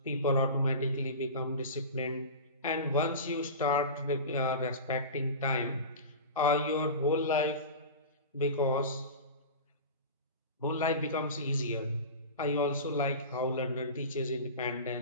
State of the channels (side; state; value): both; inverted; correlation -0.30